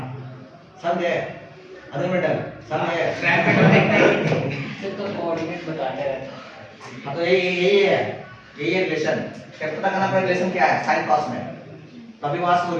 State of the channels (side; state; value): both; identical; correlation 1.00